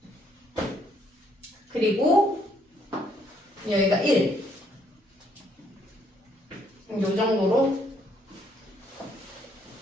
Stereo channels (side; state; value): both; normal; correlation 0.69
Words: 그리고 여기가 1. 요 정도로